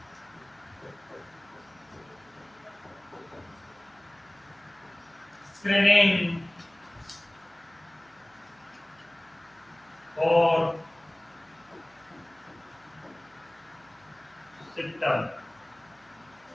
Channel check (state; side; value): noise; right; hum, 30 dB below the sound